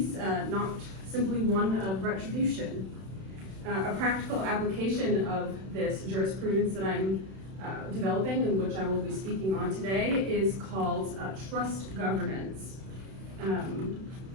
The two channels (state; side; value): late; left; 31 ms